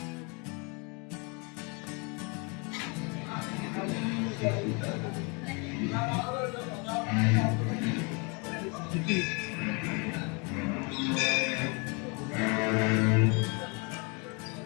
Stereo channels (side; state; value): right; quieter; 31.6 dB